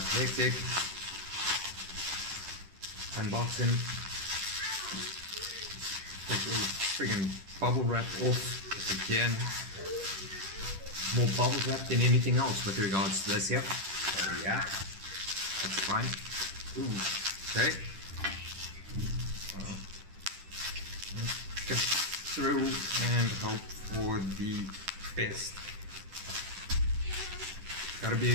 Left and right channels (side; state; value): left; late; 10 ms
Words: hectic. Unboxing. Take the friggin' bubble wrap off if I can. More bubble wrap than anything else with regards to this here. So yeah, that's fine. Ooh, okay. Let's get through and hope for the best. Gotta be